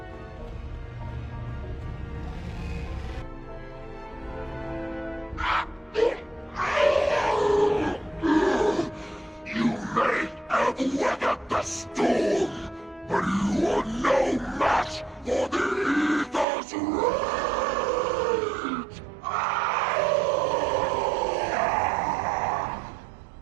You may have weathered the storm, but you are no match for the Ether's rage!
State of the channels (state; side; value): drops out; left; at 16.4 s